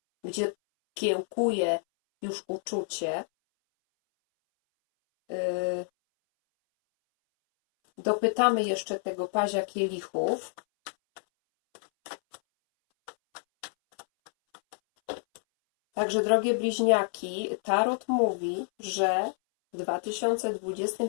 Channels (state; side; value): silent; right; 59 dB below the other